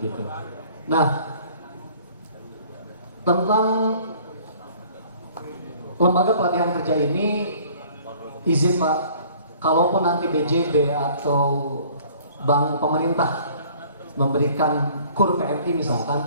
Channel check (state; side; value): inverted; both; correlation -0.54